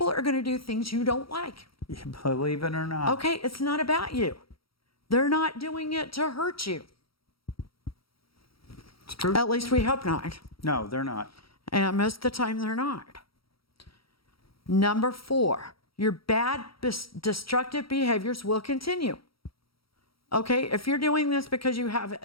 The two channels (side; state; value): right; late; 0.75 ms